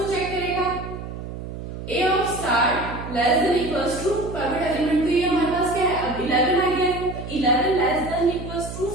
चेक करेगा A of star less than equals to private element, तो ये हमारे पास क्या है अब 11 आ गया है, तो 11 less than equals to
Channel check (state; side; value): noise; right; hum, 9 dB below the sound